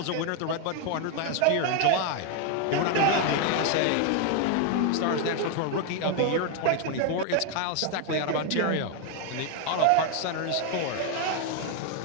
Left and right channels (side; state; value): both; different; correlation 0.01